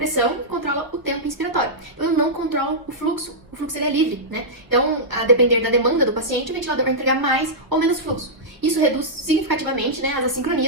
e controla o tempo inspiratório. Então eu não controlo o fluxo ele é livre, né? Então, a depender da demanda do paciente, o ventilador vai entregar mais ou menos fluxo. Isso reduz significativamente, né, as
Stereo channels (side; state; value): left; late; 1.0 ms